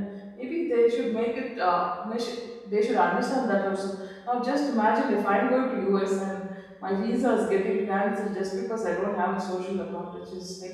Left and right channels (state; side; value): identical; both; correlation 1.00